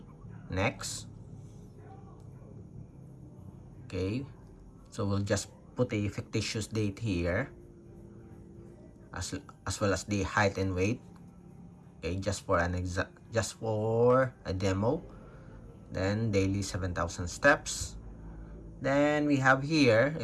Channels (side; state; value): both; identical; correlation 1.00